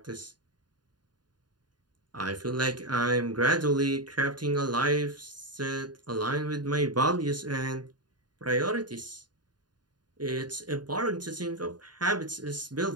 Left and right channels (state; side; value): late; left; 0.70 ms